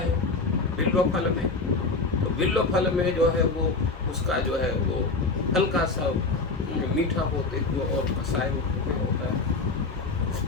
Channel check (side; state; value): right; quieter; 3.8 dB